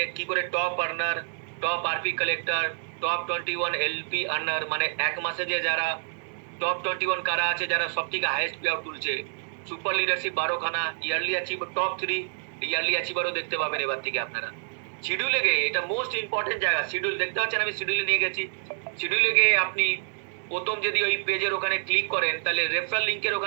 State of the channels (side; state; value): left; silent; digital silence